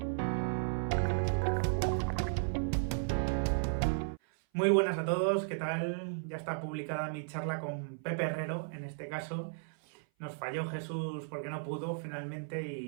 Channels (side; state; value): left; silent; 55 dB below the other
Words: Muy buenas a todos, ¿qué tal? Ya está publicada mi charla con Pepe Herrero, en este caso. Nos falló Jesús porque no pudo finalmente